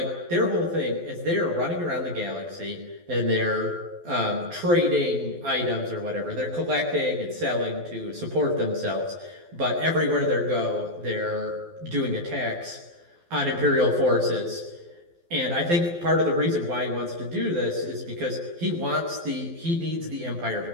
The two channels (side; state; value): left; late; 12 ms